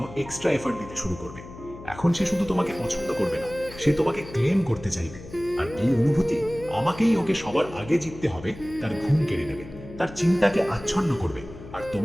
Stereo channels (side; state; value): left; noise; hum, 15 dB below the sound